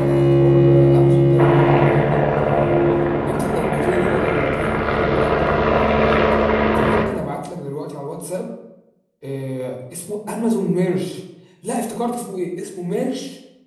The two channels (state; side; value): identical; both; correlation 1.00